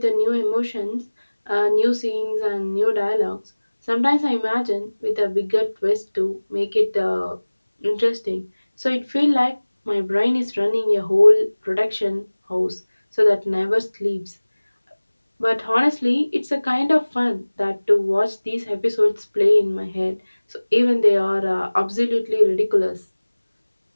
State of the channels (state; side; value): inverted; both; correlation -1.00